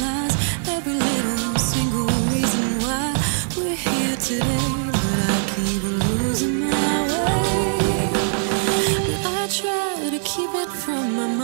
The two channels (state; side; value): silent; left; digital silence